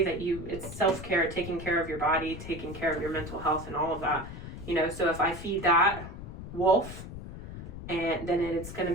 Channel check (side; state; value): left; noise; rumble, 11 dB below the sound